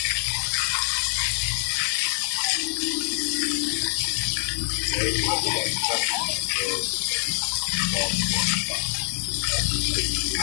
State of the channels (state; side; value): silent; right; digital silence